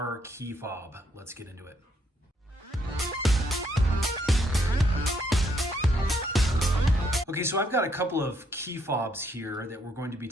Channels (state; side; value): normal; both; correlation 0.72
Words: key fob. Let's get into it. Okay, so I've got a couple of key fobs here that we're going to be